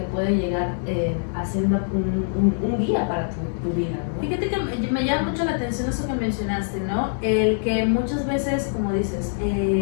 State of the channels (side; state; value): right; silent; digital silence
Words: puede llegar a ser un guía para tu vida, ¿no? Fíjate que me llama mucho la atención eso que mencionaste, ¿no? El que muchas veces, como dices,